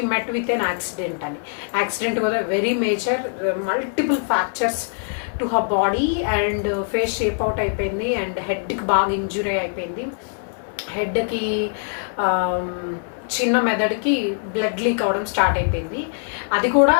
met with an accident అని. Accident was a very major, multiple fractures to her body and face shape out అయిపోయింది, అండ్ హెడ్కి బాగా ఇంజురీ అయిపోయింది. హెడ్కి చిన్న మెదడుకి బ్లడ్ లీక్ అవడం స్టార్ట్ అయిపోయింది. అది కూడా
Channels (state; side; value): silent; right; digital silence